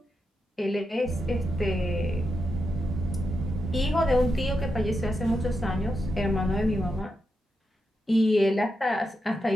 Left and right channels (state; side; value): normal; both; correlation 0.86